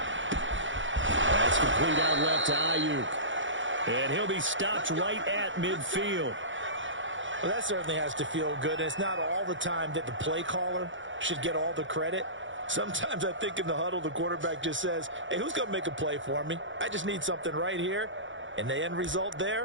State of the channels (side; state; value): left; late; 0.56 ms